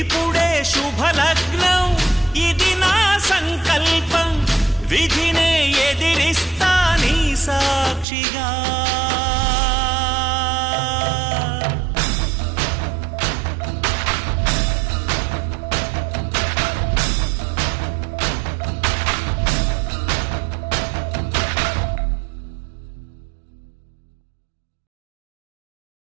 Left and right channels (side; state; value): left; drops out; at 8.1 s